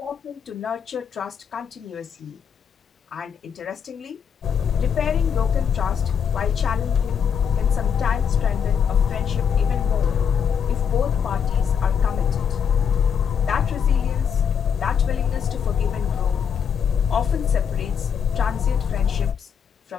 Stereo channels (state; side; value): quieter; right; 7.4 dB